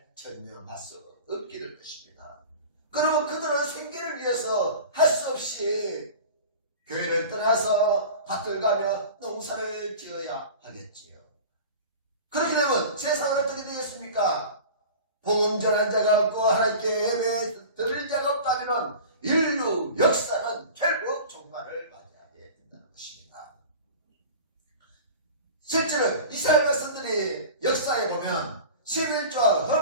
전념할 수 없게 될 것입니다. 그러면 그들은 생계를 위해서 할 수 없이 교회를 떠나서 밭을 가며 농사를 지어야 하겠지요. 그렇게 되면 세상은 어떻게 되겠습니까? 복음 전한 자가 없고 하나님께 예배 드릴 자가 없다면 인류 역사는 결국 종말을 맞이하게 된다는 것입니다. 실제로 이스라엘 백성들이 역사에 보면 11조와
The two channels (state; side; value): inverted; both; correlation -0.37